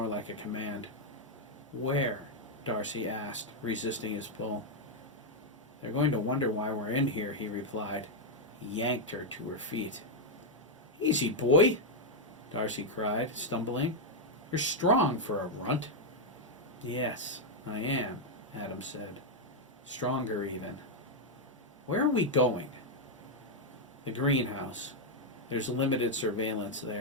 like a command. Where? Darcy asked, resisting his pull. They're going to wonder why we're in here, he replied. He yanked her to her feet. Easy, boy, Darcy cried, stumbling. You're strong for a runt. Yes, I am, Adam said. Stronger, even. Where are we going? The greenhouse. There's limited surveillance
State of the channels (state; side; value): normal; both; correlation 0.00